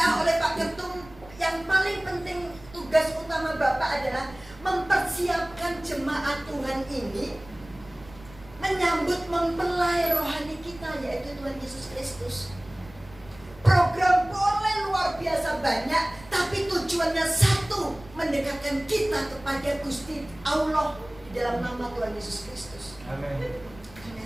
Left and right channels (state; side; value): noise; right; rumble, 21 dB below the sound